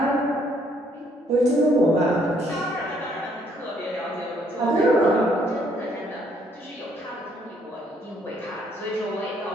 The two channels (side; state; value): both; normal; correlation 0.67